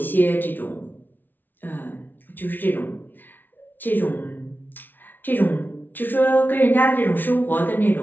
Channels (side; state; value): right; late; 0.089 ms